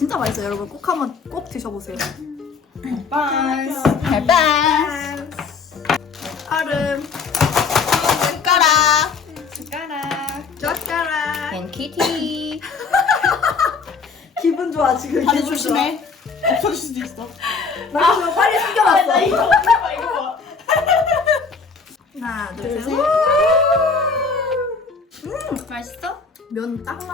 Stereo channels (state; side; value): quieter; right; 5.0 dB